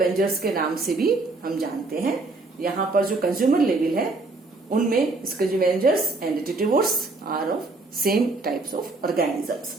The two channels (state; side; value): quieter; left; 3.4 dB